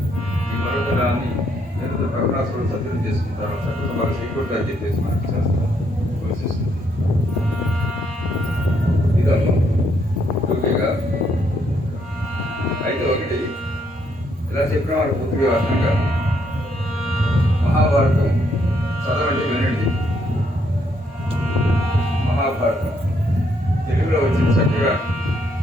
ఈ పర్వతరాన్ని ప్రభునాథుడు సత్యం చేసుకుంటారు. సత్యం వారు సీకూర్గా చెప్పేసి మనకు చేస్తారు. ఇదమ్మా టూకీగా అయితే ఒకటి ఇలా చెప్పిన వారు పూర్తిగా అర్థంగా మహాభారతం చదవండి, వినండి. మహాభారతం తెలుగులో వచ్చింది చక్కగా.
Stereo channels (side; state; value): both; normal; correlation 0.72